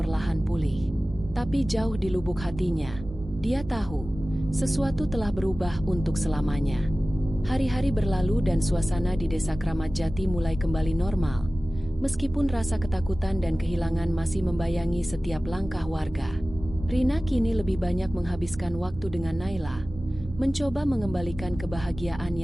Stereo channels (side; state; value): both; normal; correlation 0.97